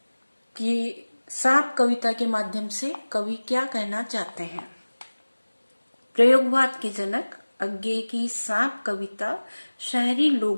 कि सांप कविता के माध्यम से कवि क्या कहना चाहते हैं। प्रयोगवाद के जनक अज्ञे की सांप कविता शहरी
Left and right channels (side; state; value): both; inverted; correlation -1.00